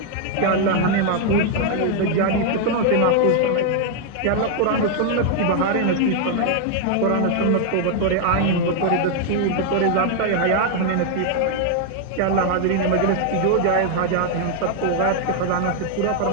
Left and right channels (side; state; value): both; different; correlation 0.00